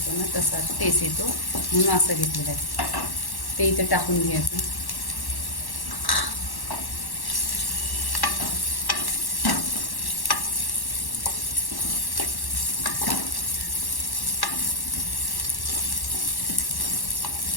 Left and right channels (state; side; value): late; right; 1.1 ms